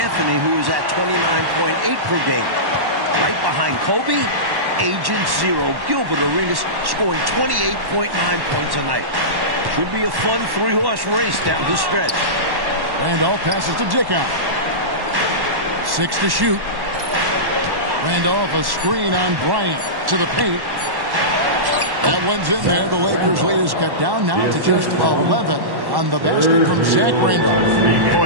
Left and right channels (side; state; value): left; late; 1.1 ms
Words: who is at 29.8 per game. Right behind Kobe, Agent Zero, Gilbert Arenas, scoring 28.9 points a night. Should be a fun three-horse race down the stretch. Randolph passes to Dickow. 6 to shoot. Randolph, a screen on Bryant to the paint. That one's in there. The Lakers' lead is cut down now to just 11 on the basket from Zach Randolph.